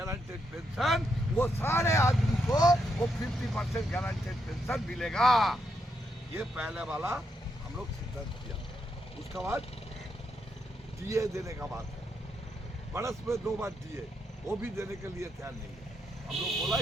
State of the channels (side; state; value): both; normal; correlation 0.80